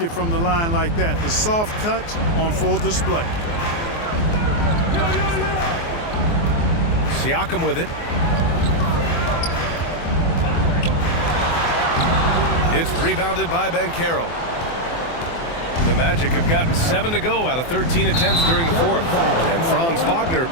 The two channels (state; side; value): late; right; 24 ms